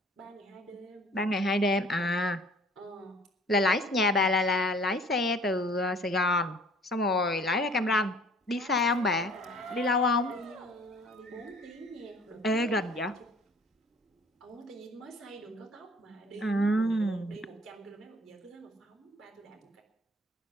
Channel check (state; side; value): normal; both; correlation 0.52